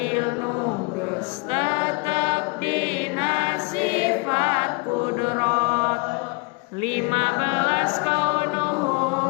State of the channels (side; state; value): right; quieter; 28.6 dB